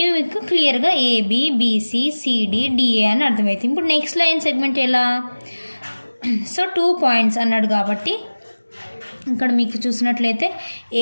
మీకు క్లియర్గా AB, BC, CD, DA అని అర్థమవుతుంది. ఇప్పుడు నెక్స్ట్ లైన్ సెగ్మెంట్ ఎలా? సో 2 పాయింట్స్ అన్నాడు కాబట్టి ఇక్కడ మీకు చూసినట్లయితే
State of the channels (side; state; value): both; inverted; correlation -1.00